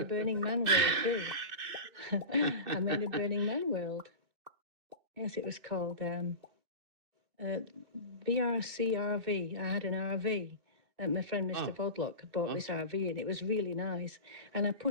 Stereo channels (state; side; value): late; left; 2.6 ms